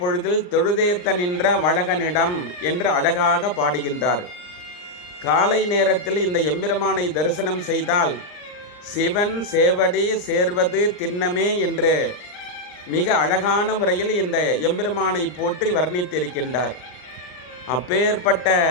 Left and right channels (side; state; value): right; late; 39 ms